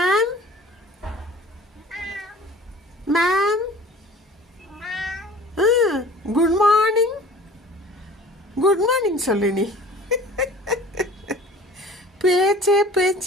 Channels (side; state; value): both; normal; correlation 0.45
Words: Ma'am good morning. Good morning சொல்லு நீ. பேச்சே